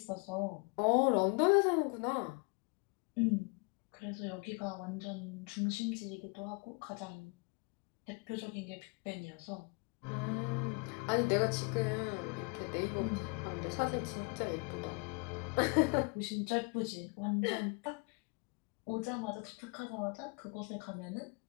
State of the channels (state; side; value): quieter; right; 32.2 dB